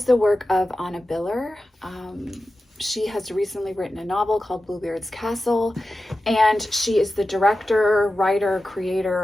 the work of Anna Biller. She has recently written a novel called Bluebeard's Castle, and she is the director, writer,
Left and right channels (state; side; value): normal; both; correlation 0.93